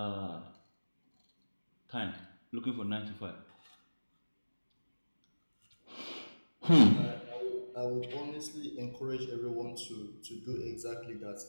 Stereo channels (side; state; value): both; inverted; correlation -1.00